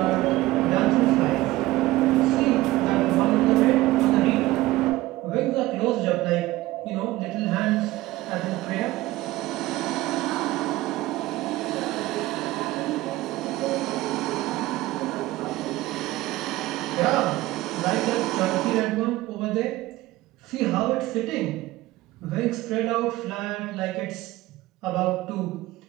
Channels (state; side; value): quieter; left; 17.7 dB